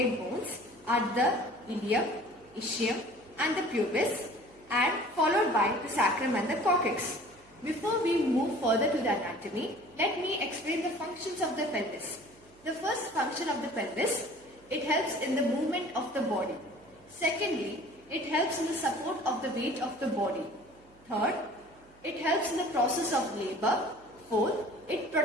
bones are the ilium, ischium and the pubis, and followed by the sacrum and the coccyx. Before we move further to the anatomy, let me explain the functions of the pelvis. The first function of the pelvis, it helps in the movement of the body. Secondly, it helps in the support of the weight of the body. Third, it helps in the process of labor. Fourth, it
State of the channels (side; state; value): right; noise; hum, 29 dB below the sound